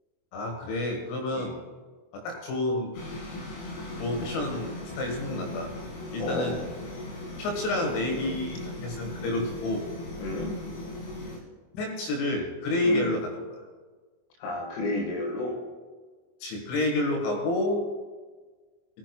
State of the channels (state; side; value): late; right; 24 ms